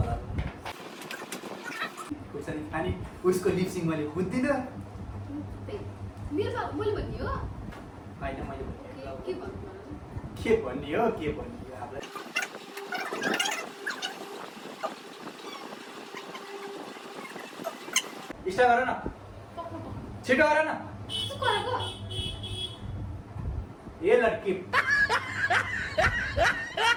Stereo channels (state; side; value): identical; both; correlation 1.00